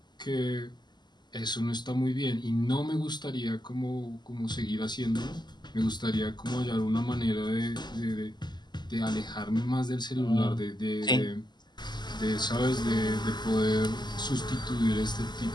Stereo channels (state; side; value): late; right; 0.21 ms